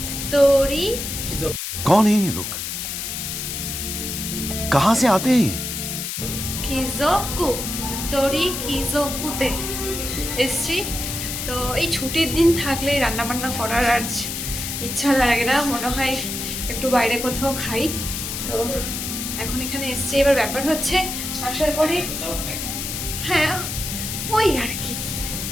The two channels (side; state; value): left; noise; hiss, 4 dB below the sound